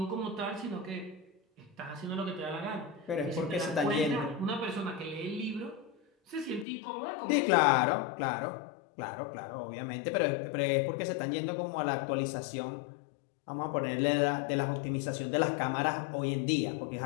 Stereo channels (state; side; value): drops out; right; at 6.7 s